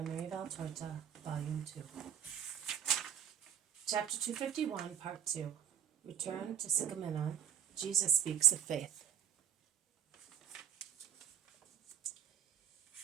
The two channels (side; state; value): left; quieter; 9.0 dB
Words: Maria Valtorta, Volume 2. Chapter 251, Part 2. Return to Sicaminon. Jesus speaks of faith.